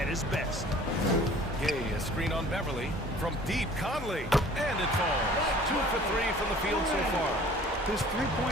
his best. Gay, a screen on Beverly. From deep, Conley. And it falls. 2 for 3 from the field so far. His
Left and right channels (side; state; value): both; normal; correlation 0.49